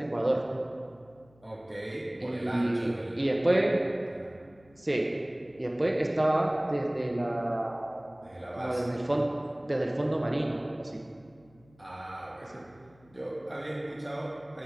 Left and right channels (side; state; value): left; noise; hum, 29 dB below the sound